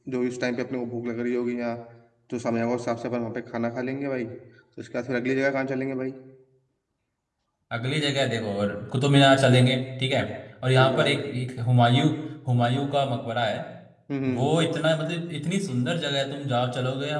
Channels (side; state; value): both; identical; correlation 1.00